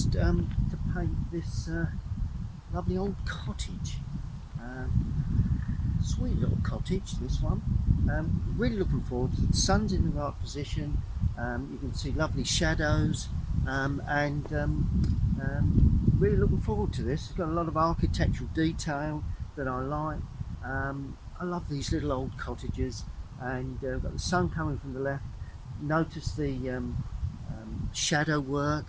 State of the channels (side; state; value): both; identical; correlation 1.00